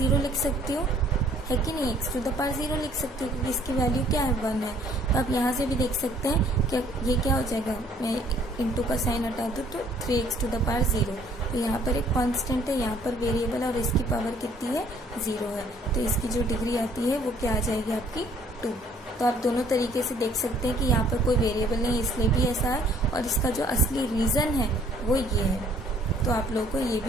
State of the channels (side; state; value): both; normal; correlation 0.59